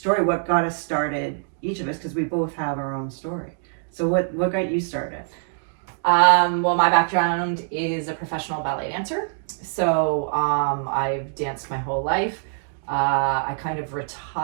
What got us started, each of us, because we both have our own story. So what got you started? Well, my background is a professional ballet dancer. So I've danced my whole life. I kind of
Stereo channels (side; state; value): left; silent; digital silence